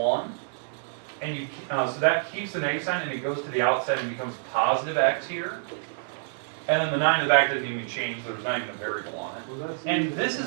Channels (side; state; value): left; silent; digital silence